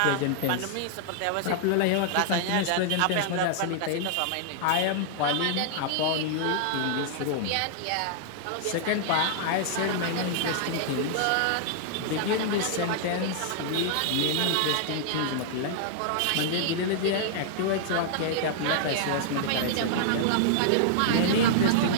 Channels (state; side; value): different; both; correlation -0.01